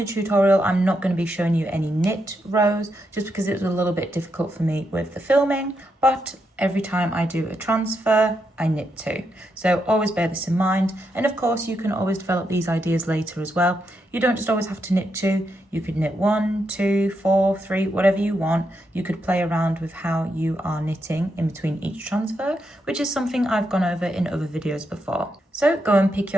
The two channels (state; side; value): normal; both; correlation 0.82